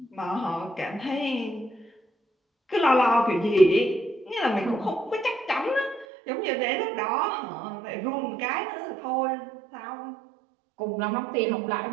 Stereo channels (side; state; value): left; drops out; at 6.1 s